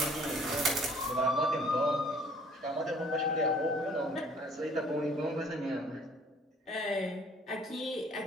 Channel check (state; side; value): normal; both; correlation 0.56